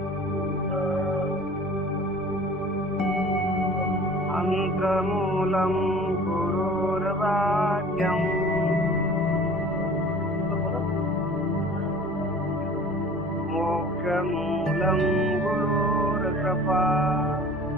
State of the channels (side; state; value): both; normal; correlation 0.45